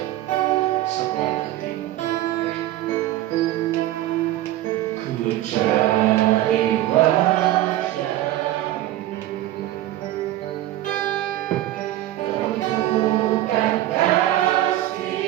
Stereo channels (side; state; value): left; quieter; 14.7 dB